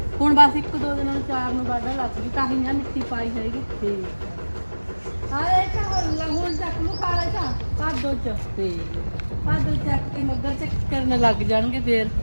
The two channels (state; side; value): inverted; both; correlation -1.00